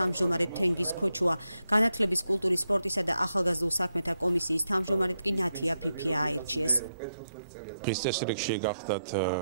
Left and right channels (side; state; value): both; inverted; correlation -0.85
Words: თენგიზ ქოჩუა, განათლების, კულტურის, სპორტისა და ახალგაზრდულ საქმეთა კომისიის თავმჯდომარედ კი ნათია ფიფია აირჩიეს. დღის წესრიგში გახდათ